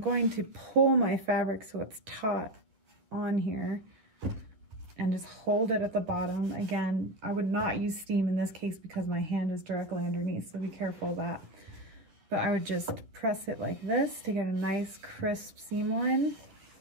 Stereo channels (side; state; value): left; late; 10 ms